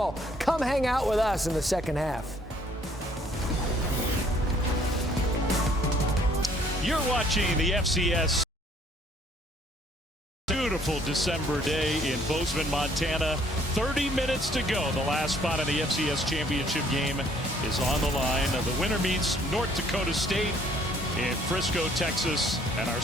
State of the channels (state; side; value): normal; both; correlation 0.62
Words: Come hang out with us in the second half. You're watching the FCS. Beautiful December day in Bozeman, Montana. 30 minutes to go. The last spot in the FCS championship game is on the line. The winner meets North Dakota State in Frisco, Texas. And our